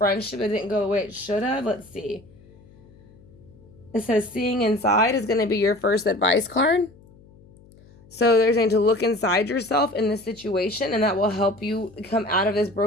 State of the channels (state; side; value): noise; left; hum, 25 dB below the sound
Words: that didn't go the way it should have. Let's see. It says seeing inside is going to be your first advice card. So they're saying to look inside yourself in this situation, and that will help you come out of this